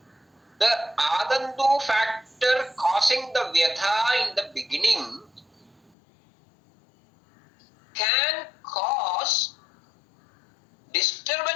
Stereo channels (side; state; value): right; drops out; at 6.0 s